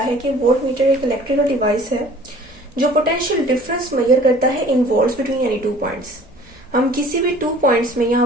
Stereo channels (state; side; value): normal; both; correlation 0.50